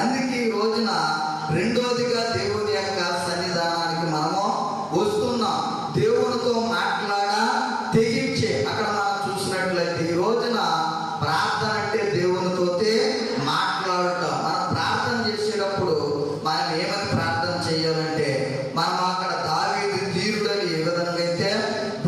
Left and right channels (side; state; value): both; identical; correlation 1.00